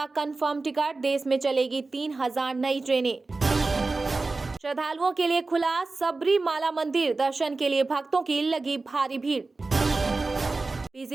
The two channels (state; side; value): quieter; left; 3.6 dB